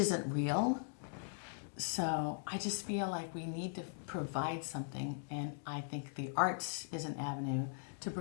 real. So I just feel like we need to provide something, and I think the arts is an avenue to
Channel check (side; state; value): right; silent; digital silence